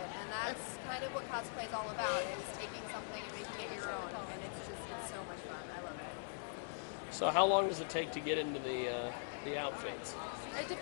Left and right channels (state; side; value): silent; right; digital silence